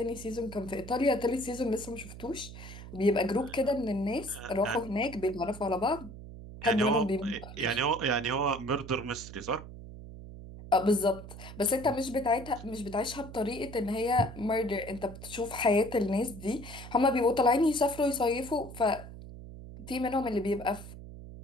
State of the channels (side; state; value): right; noise; hum, 13 dB below the sound